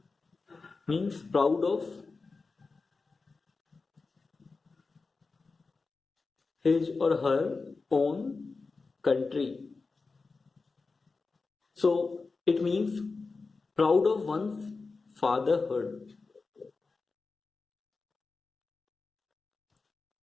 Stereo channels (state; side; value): quieter; right; 4.1 dB